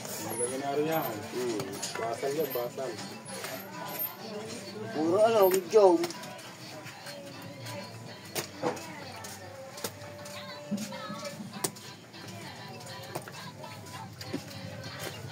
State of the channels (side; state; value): both; identical; correlation 1.00